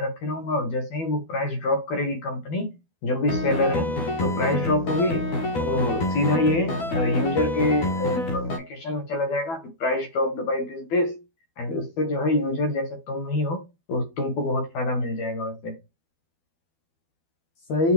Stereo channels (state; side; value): late; right; 12 ms